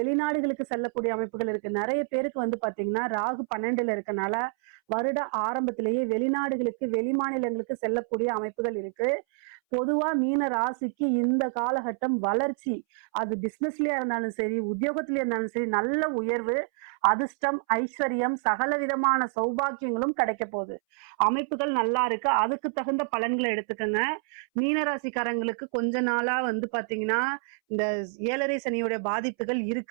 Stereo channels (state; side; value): silent; left; 60 dB below the other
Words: செல்லக்கூடிய அமைப்புகள் இருக்கு. நிறைய பேருக்கு பாத்தீங்கன்னா ராகு 12ல இருக்கனால வருட ஆரம்பத்திலேயே வெளிநாடுகளுக்கு, வெளி மாநிலங்களுக்கு செல்லக்கூடிய அமைப்புகள் இருக்கு. பொதுவா மீன ராசிக்கு இந்த காலகட்டம் வளர்ச்சி, அது பிசினஸ்லயா இருந்தாலும் சரி, உத்தியோகத்திலயா இருந்தாலும் சரி, நல்ல உயர்வு, அதிர்ஷ்டம், ஐஸ்வர்யம், சகல விதமான சௌபாக்கியங்களும் கிடைக்க போகுது. அமைப்புகள் நல்லா இருக்கு. அதுக்கு தகுந்த பலன்களை எடுத்துக்கங்க. மீனராசிக்காரங்களுக்கு கொஞ்ச நாளா பாத்தீங்கன்னா இந்த 7.5 சனியோட பாதிப்புகள்